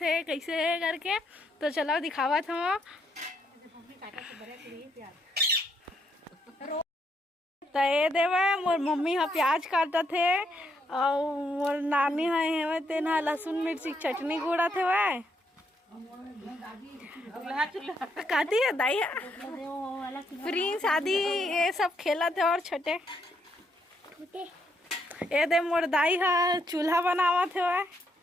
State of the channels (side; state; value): both; normal; correlation 0.76